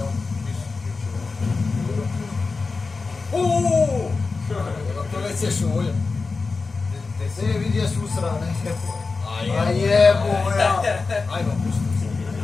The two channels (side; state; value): right; quieter; 4.2 dB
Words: To nećeš uvolja. Te se vidi jesu usrane. A jebo, ja. Ajmo, pusti.